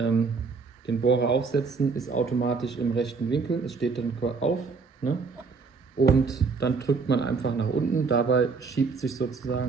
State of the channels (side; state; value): left; quieter; 4.8 dB